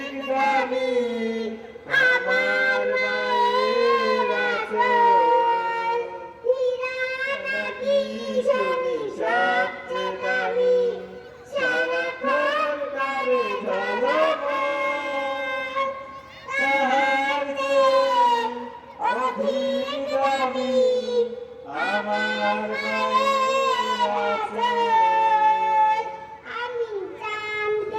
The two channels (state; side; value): identical; both; correlation 1.00